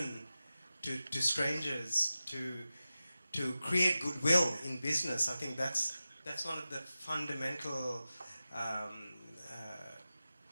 to strangers, to create goodwill in business. I think that's one of the fundamental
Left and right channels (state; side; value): inverted; both; correlation -0.94